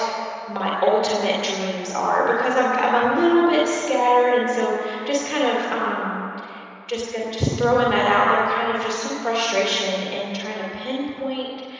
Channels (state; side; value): identical; both; correlation 1.00